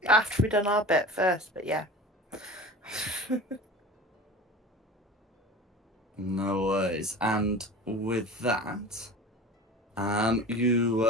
After we've done our bit first, but yeah. No worries. And with that,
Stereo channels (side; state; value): both; normal; correlation 0.36